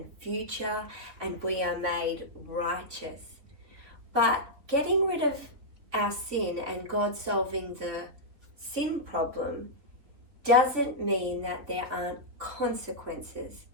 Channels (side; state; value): left; late; 3.8 ms